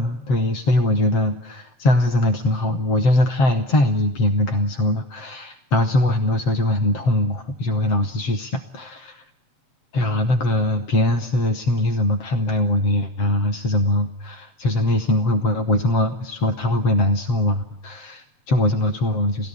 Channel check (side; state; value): right; late; 7.6 ms